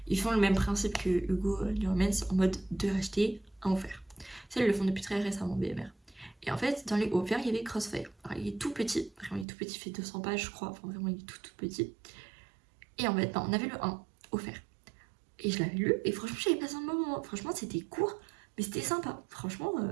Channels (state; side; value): drops out; left; at 9.5 s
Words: ils font le même principe que Hugo Newmans en mode 2 achetés, 1 offert. Ça ils le font depuis très récemment BMR. Et en fait, dans les offerts, il y avait Crossfire. Alors, il est tout petit, vraiment il est tout petit, il fait 200 pages je crois, enfin vraiment il est tout petit. Et en fait, ben, on avait le 1 offert. Et je l'avais lu, et franchement, j'avais passé un bon moment. Franchement, c'était court, mais c'était sympa. Franchement,